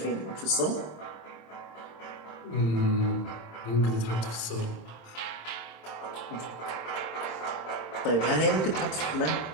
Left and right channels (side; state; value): right; late; 26 ms